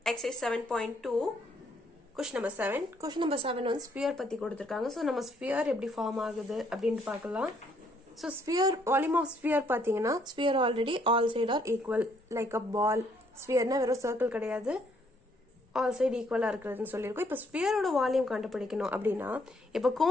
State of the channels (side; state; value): both; normal; correlation 0.68